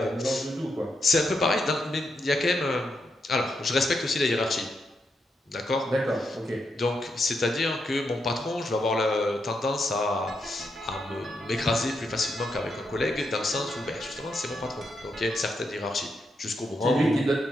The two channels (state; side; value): normal; both; correlation 0.82